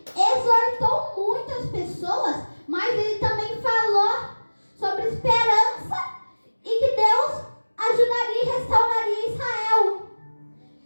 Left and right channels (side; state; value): both; inverted; correlation -1.00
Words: exortou muitas pessoas, mas ele também falou sobre esperança e que Deus ajudaria e restauraria Israel.